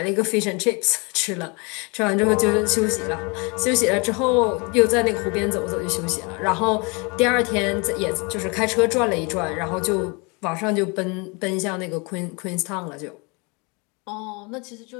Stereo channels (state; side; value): quieter; right; 30.2 dB